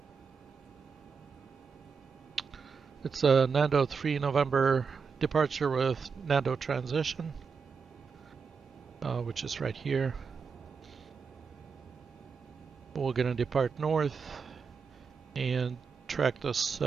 it's a NANDO 3 November departure with NANDO transition, which is right here. We're going to depart north and track this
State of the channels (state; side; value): quieter; left; 5.6 dB